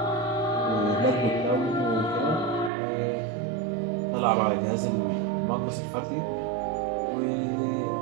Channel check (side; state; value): left; drops out; at 2.7 s